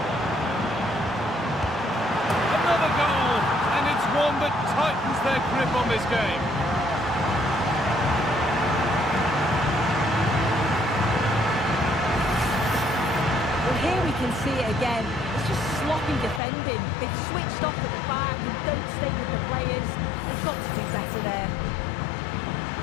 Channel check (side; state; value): right; drops out; at 16.4 s